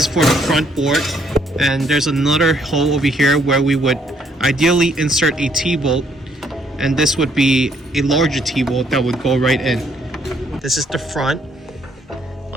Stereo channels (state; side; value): normal; both; correlation 0.68